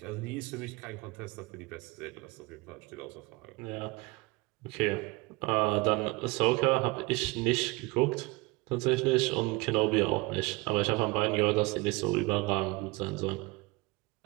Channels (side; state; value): left; quieter; 23.7 dB